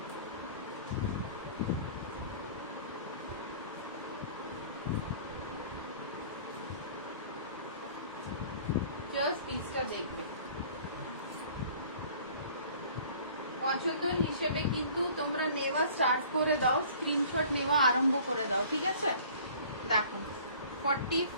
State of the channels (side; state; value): both; inverted; correlation -0.49